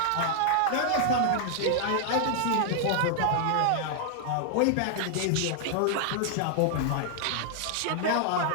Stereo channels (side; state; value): both; different; correlation -0.01